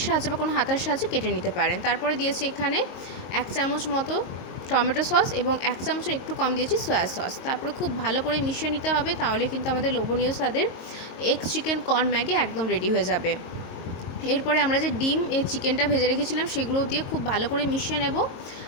সাহায্যে বা কোনো হাতার সাহায্যে কেটে নিতে পারেন। তারপরে দিয়েছি এখানে 1 চামচ মতো টমেটো সস এবং 1 চামচের একটু কম দিয়েছি সয়া সস। তারপরে খুব ভালো করে মিশিয়ে নিতে হবে, তাহলে কিন্তু আমাদের লোভনীয় স্বাদের এগ চিকেন কর্ন ম্যাগি একদম রেডি হয়ে যাবে। এরপরে আমরা যে ডিম চিকেনটা ভেজে রেখেছিলাম সেগুলো দিয়ে খুব ভালো করে মিশিয়ে নেব।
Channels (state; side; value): late; right; 22 ms